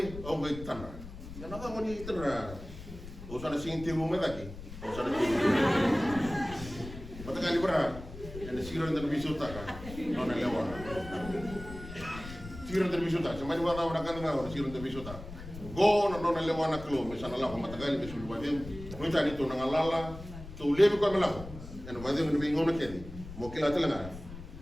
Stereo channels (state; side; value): noise; left; rumble, 13 dB below the sound